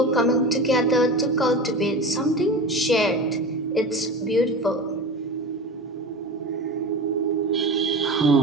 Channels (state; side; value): normal; both; correlation 0.29